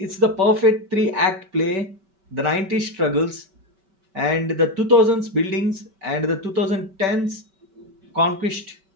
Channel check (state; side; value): late; left; 5.2 ms